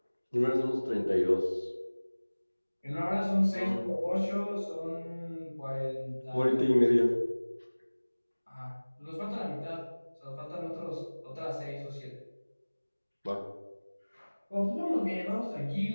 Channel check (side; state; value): both; inverted; correlation -1.00